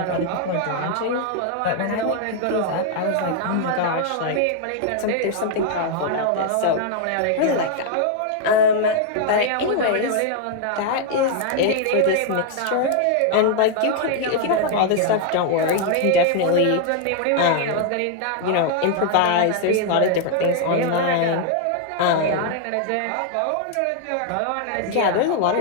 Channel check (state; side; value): different; both; correlation 0.00